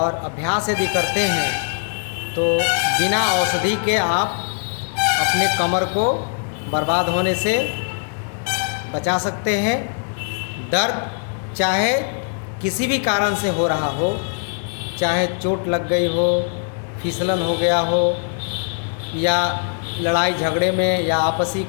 अभ्यास यदि करते हैं तो बिना औषधि के आप अपने कमर को बर्बाद होने से बचा सकते हैं। दर्द चाहे किसी भी कारण से हो रहा हो, चाहे चोट लग गई हो, फिसलन हो गया हो, या लड़ाई झगड़े में या आपसी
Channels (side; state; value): right; silent; 59 dB below the other